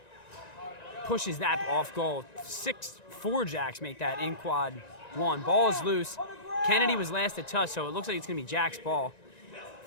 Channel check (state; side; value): late; right; 1.9 ms